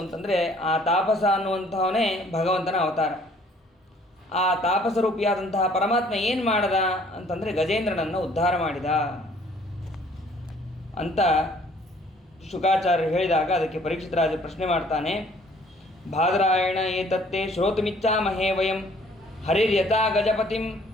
ಅಂತಂದರೆ, ಆ ತಾಪಸ ಅನ್ನುವಂಥವನೇ ಭಗವಂತನ ಅವತಾರ. ಆ ತಾಪಸರೂಪಿಯಾದಂತಹ ಪರಮಾತ್ಮ ಏನು ಮಾಡದ ಅಂತಂದರೆ ಗಜೇಂದ್ರನನ್ನು ಉದ್ಧಾರ ಮಾಡಿದ ಅಂತ ಶುಕಾಚಾರ್ಯರು ಹೇಳಿದಾಗ ಅದಕ್ಕೆ ಪರೀಕ್ಷಿತ ರಾಜ ಪ್ರಶ್ನೆ ಮಾಡ್ತಾನೆ. ಬಾದರಾಯಣ ಏತತ್ತೇ ಶ್ರೋತುಮಿಚ್ಛಾಮಹೇ ವಯಂ ಹರಿರ್ಯಥಾ ಗಜಪತಿಂ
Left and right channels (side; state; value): both; normal; correlation 0.58